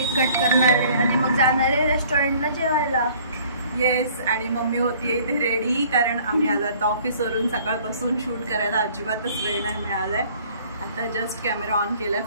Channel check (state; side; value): inverted; both; correlation -0.55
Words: कट करणार आहे आणि मग जाणार आहे रेस्टॉरंटला जेवायला. येस, आणि मम्मी होती इथे रेडी, कारण आम्ही आज आता ऑफिसवरून सकाळपासून शूट करायला अजिबातच वेळ नाही मिळालाय. आता जस्ट कॅमेरा ऑन केलाय,